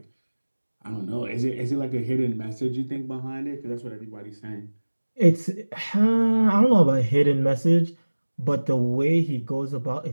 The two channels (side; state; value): both; inverted; correlation -1.00